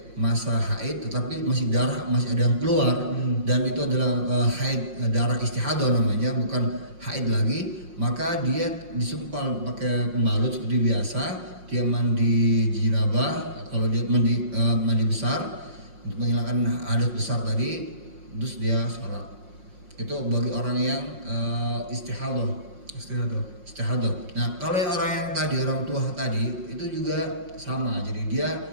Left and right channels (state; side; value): late; left; 5.6 ms